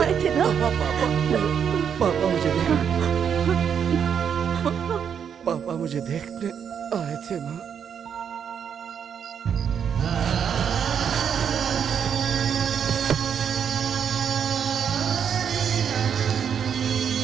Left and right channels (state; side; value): quieter; left; 7.8 dB